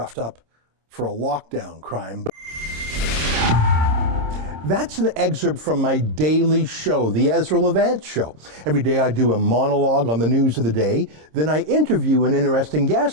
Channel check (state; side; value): late; left; 26 ms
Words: up for a lockdown crime. That's an excerpt from my daily show, The Ezra Levant Show. Every day I do a monologue on the news of the day, then I interview an interesting